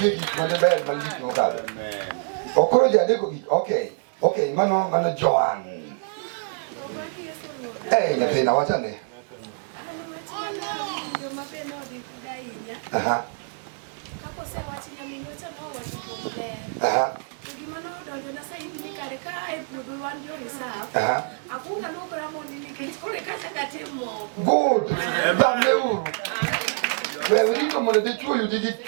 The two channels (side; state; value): left; silent; 61 dB below the other